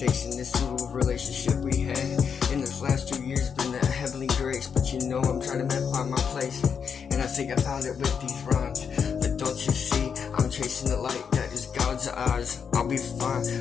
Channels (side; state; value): right; quieter; 6.7 dB